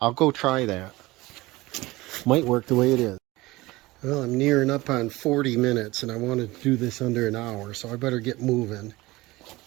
I'll go try that. Might work the way it is. Well, I'm nearing up on 40 minutes and I want to do this under an hour, so I better get moving.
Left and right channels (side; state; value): left; quieter; 20.1 dB